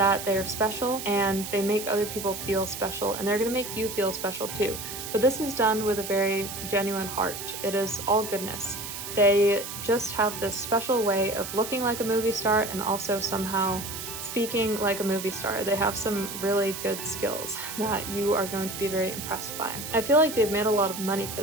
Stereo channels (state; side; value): noise; right; hiss, 8 dB below the sound